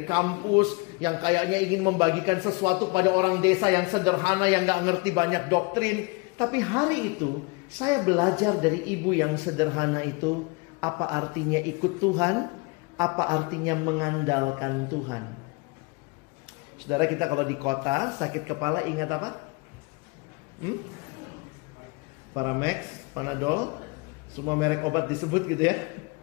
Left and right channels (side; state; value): right; quieter; 28.2 dB